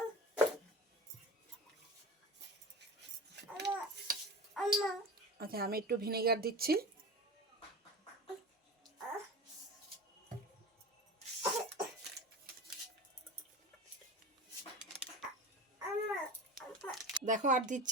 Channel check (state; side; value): normal; both; correlation 0.32